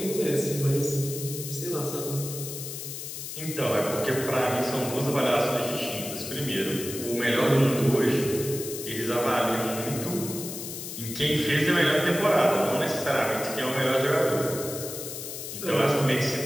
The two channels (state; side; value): noise; left; hiss, 8 dB below the sound